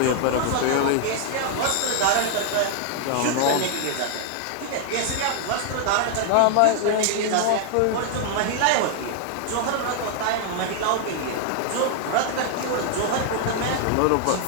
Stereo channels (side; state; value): both; different; correlation 0.00